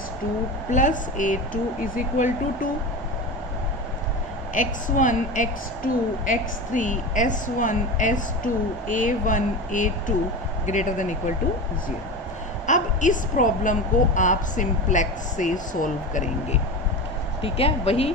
plus a2 is equal to 2, x1 x2 x3 s1 s2 a1 a2 greater than equal to 0। अब इस प्रॉब्लम को आप सिंप्लेक्स से सोल्व करेंगे। ठीक है, वही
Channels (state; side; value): normal; both; correlation 0.26